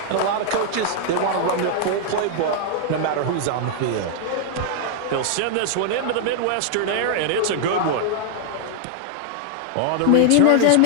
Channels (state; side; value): different; both; correlation -0.01